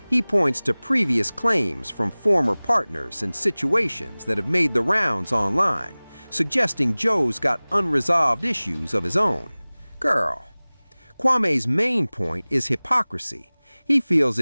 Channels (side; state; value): both; inverted; correlation -1.00